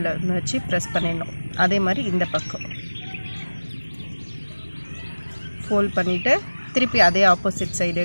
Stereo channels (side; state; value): both; inverted; correlation -1.00